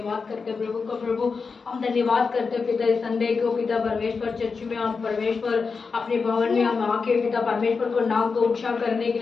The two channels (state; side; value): quieter; right; 4.9 dB